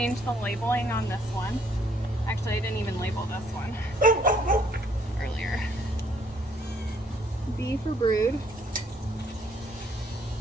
the labeling on this one. Actually, I didn't even label this one earlier. B for brood.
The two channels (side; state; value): both; normal; correlation 0.66